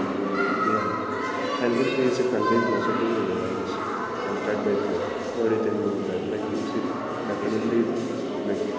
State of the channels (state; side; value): identical; both; correlation 1.00